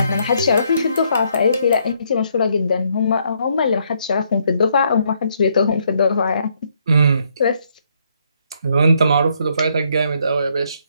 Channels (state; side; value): inverted; both; correlation -0.72